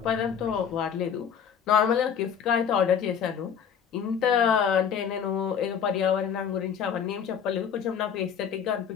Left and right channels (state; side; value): quieter; right; 7.7 dB